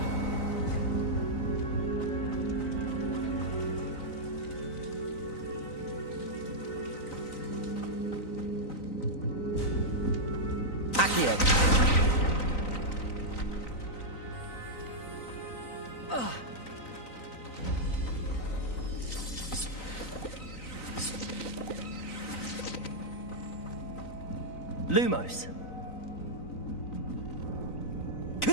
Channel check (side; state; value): right; late; 3.9 ms